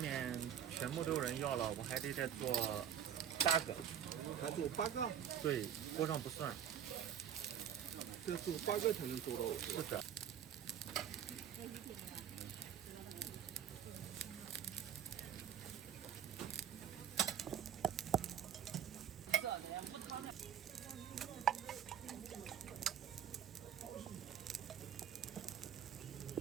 面全部都有人要了，我还得再做8个。还做8个？对，锅上不算。再做8个才能做到。是的。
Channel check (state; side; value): quieter; left; 9.1 dB